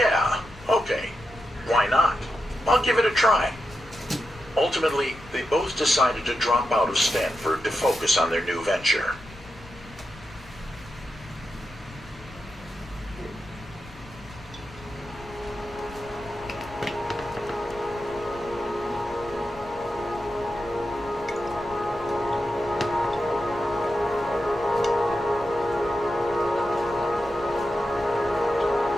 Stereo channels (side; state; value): left; noise; rumble, 19 dB below the sound